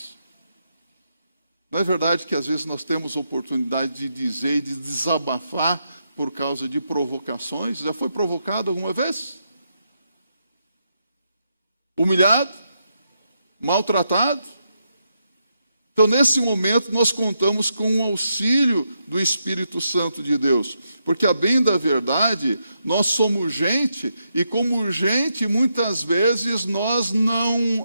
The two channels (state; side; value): inverted; both; correlation -0.82